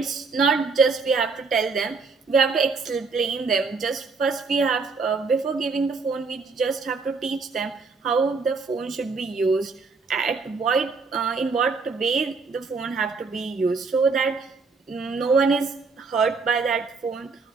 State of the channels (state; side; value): quieter; left; 4.5 dB